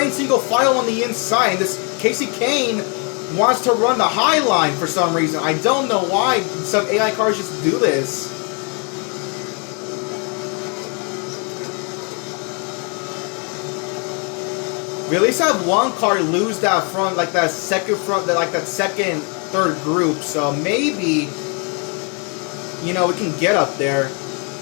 single file on the inside. And this Casey Kane wants to run the high line for some reason. I don't know why some AI cars just do this. We at least have one car lose that front, like that second front, like that second, third group. So maybe, you know, we can get up there.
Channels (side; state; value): right; quieter; 36.0 dB